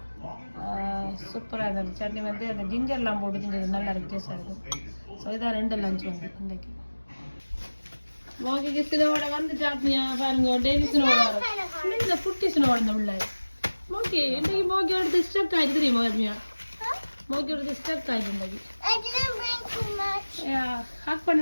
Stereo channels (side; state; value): both; inverted; correlation -1.00